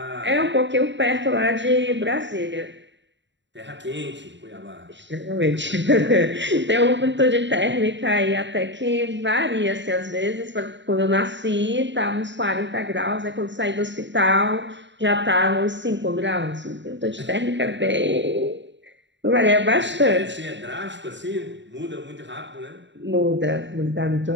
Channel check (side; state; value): left; late; 0.53 ms